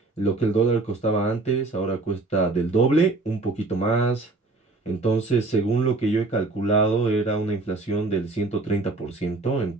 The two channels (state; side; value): quieter; left; 3.4 dB